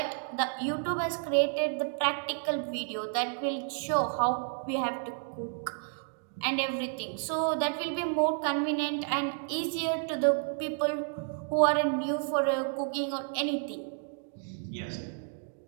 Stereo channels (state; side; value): silent; left; 57 dB below the other